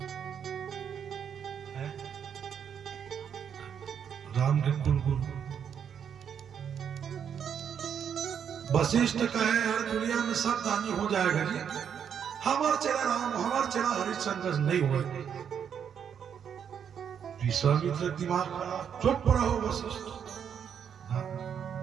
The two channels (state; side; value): quieter; left; 8.0 dB